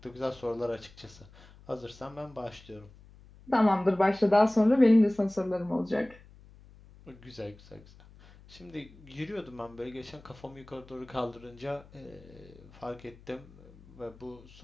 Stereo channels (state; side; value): noise; left; hum, 23 dB below the sound